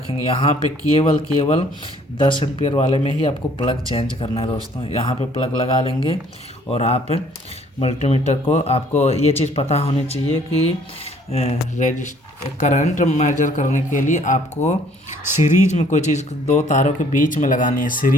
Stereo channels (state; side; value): normal; both; correlation 0.60